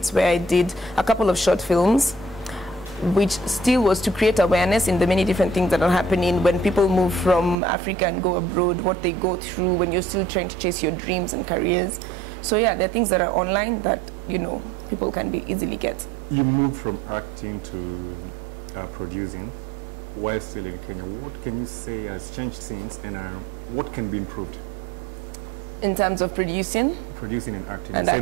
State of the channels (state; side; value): drops out; left; at 7.6 s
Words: where I did a couple of short films, which still was to create awareness in the many different things that are happening when people move from Africa and go abroad, what they go through when you're still trying to chase your dreams and careers. So yeah, there are things that are online that, people can be easily get. You moved from acting to producing while still in Kenya. What can you say has changed since, and what can be improved? In terms of producing? Producing and acting. And